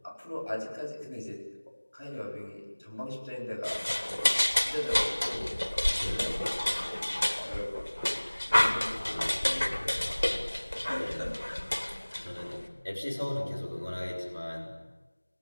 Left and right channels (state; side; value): inverted; both; correlation -1.00